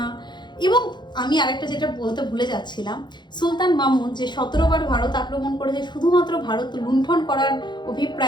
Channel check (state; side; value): late; right; 0.21 ms